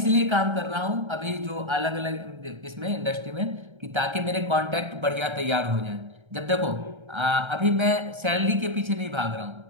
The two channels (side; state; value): left; late; 1.3 ms